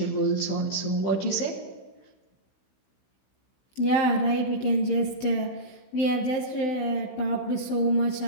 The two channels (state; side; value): late; right; 16 ms